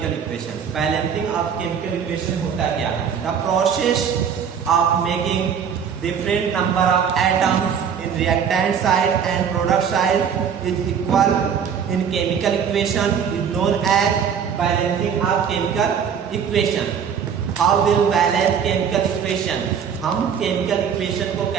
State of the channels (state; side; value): quieter; left; 7.5 dB